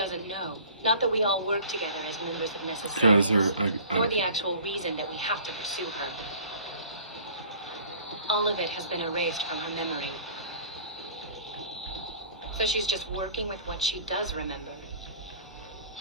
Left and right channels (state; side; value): inverted; both; correlation -0.47